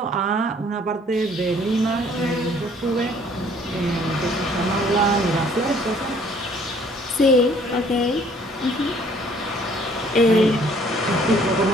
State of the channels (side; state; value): both; normal; correlation 0.59